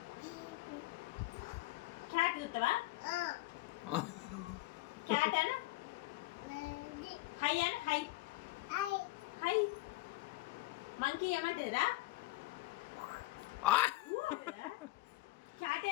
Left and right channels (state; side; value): quieter; right; 18.8 dB